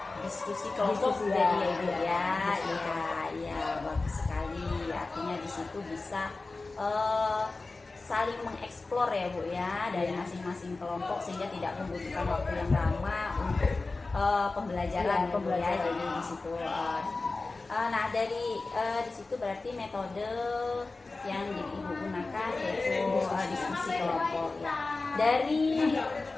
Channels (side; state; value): right; quieter; 3.5 dB